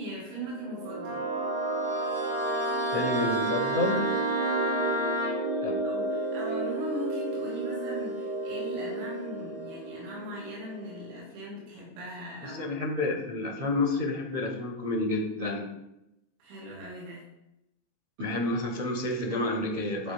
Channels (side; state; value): left; late; 19 ms